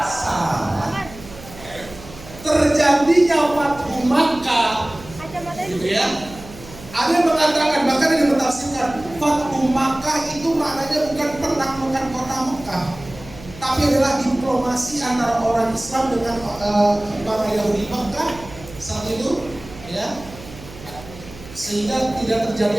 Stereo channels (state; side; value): noise; right; hum, 17 dB below the sound